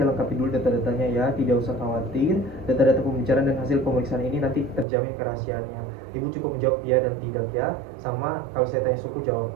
lengkapi dulu data-datanya ya, tidak usah khawatir. Data-data pembicaraan dan hasil pemeriksaan ini nanti terjamin kerahasiaannya. Ibu cukup menjawab ya dan tidak ya, sama kalau saya tanya suku jawab.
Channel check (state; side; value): drops out; left; at 4.9 s